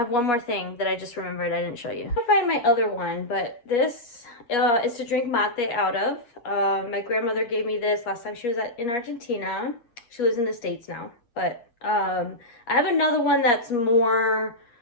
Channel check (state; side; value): late; right; 8.3 ms